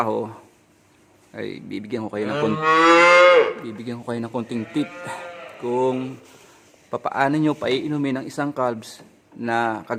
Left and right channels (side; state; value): both; identical; correlation 1.00